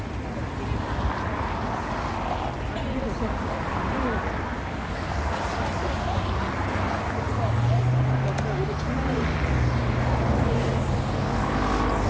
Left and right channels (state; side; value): identical; both; correlation 1.00